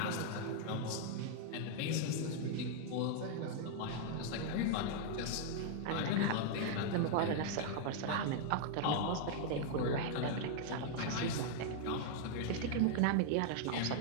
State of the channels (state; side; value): different; both; correlation -0.01